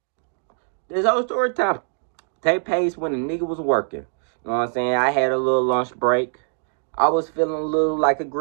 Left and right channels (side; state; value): left; silent; digital silence